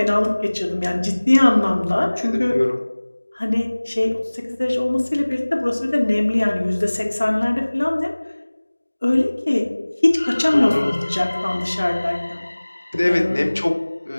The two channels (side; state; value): both; inverted; correlation -1.00